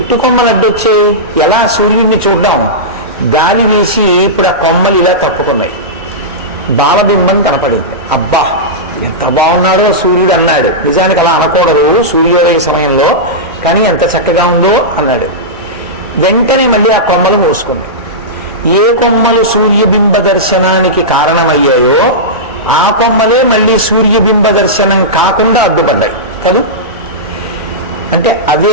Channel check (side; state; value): both; normal; correlation -0.14